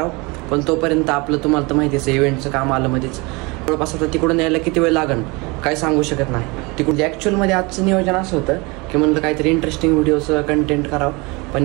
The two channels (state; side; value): quieter; left; 26.3 dB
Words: पण तोपर्यंत आपलं तुम्हाला तर माहितीच आहे इव्हेंटचं काम आलं मध्येच. जवळपास आता तिकडून यायला किती वेळ लागन काय सांगू शकत नाही. तिकडून ॲक्च्युअलमध्ये आजचं नियोजन असं होतं की म्हणलं काहीतरी इंटरेस्टिंग व्हिडिओचं कंटेंट करावं, पण